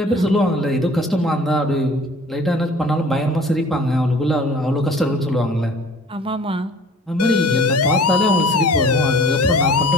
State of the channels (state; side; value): normal; both; correlation 0.47